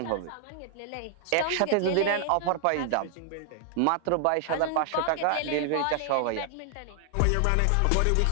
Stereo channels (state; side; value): different; both; correlation 0.00